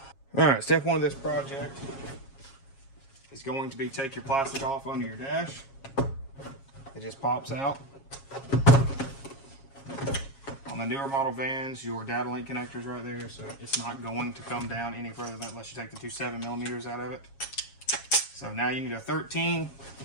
All right, step one of this project is going to be take your plastic off under your dash. It just pops out. On the newer model vans, your data link connector's right there, so it's not going to come down any further than unless you take the two 7mm out of it. So now you need a 13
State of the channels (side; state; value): right; late; 7.3 ms